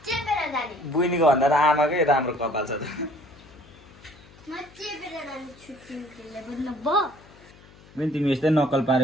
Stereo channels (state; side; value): noise; left; hum, 24 dB below the sound